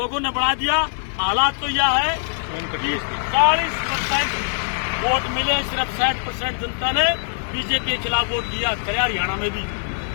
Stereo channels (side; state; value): right; silent; digital silence